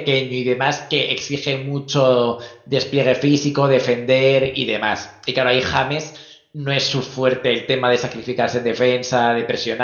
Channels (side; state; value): both; identical; correlation 1.00